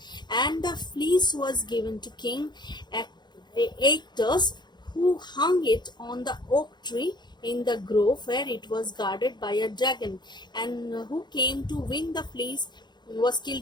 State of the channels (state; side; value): late; right; 0.21 ms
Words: and the fleece was given to King Aeacus, who hung it on the oak tree in the grove where it was guarded by a dragon, and who came to win the fleece was